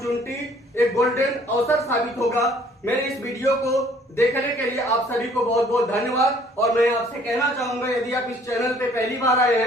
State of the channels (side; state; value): both; normal; correlation 0.58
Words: एक गोल्डन अवसर साबित होगा। मेरे इस वीडियो को देखने के लिए आप सभी को बहुत बहुत धन्यवाद। और मैं आपसे कहना चाहूंगा, यदि आप इस चैनल पे पहली बार आए